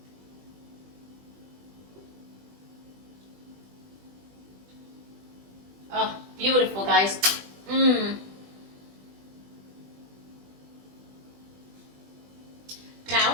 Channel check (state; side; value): late; left; 20 ms